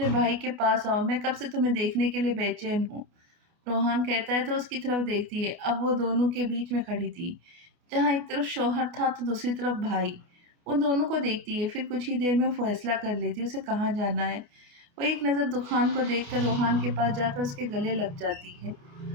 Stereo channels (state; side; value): late; left; 28 ms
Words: भाई के पास आओ, मैं कब से तुम्हें देखने के लिए बेचैन हूँ। रोहन कहता है तो उसकी तरफ देखती है। अब वो दोनों के बीच में खड़ी थी, जहाँ एक तरफ शौहर था तो दूसरी तरफ भाई। उन दोनों को देखती है, फिर कुछ ही देर में फैसला कर लेती है उसे कहाँ जाना है। वो एक नज़र दुखान को देखकर रोहान के पास जाकर उसके गले लग जाती है,